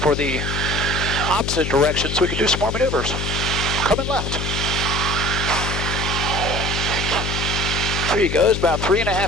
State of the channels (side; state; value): left; noise; hum, 3 dB below the sound